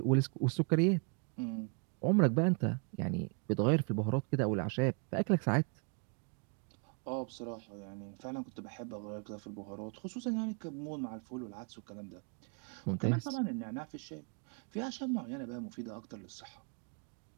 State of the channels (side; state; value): left; quieter; 37.4 dB